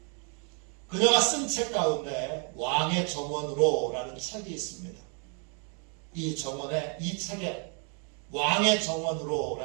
그녀가 쓴 책 가운데 왕의 정원으로라는 책이 있습니다. 이 책에 왕의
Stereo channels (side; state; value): left; quieter; 38.4 dB